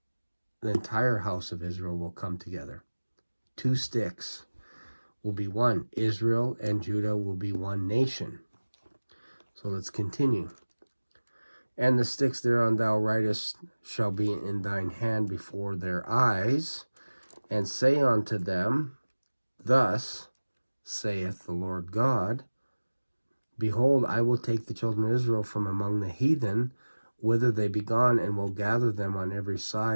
the entire house of Israel will come together. 2 sticks will be one. Israel and Judah will be one nation. So let's continue. And the sticks thereon thou writest shall be in thine hand before their eyes, and say unto them, Thus saith the Lord God, Behold, I will take the children of Israel from among the heathen, whither they be gone, and will gather them on every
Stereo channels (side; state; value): both; inverted; correlation -1.00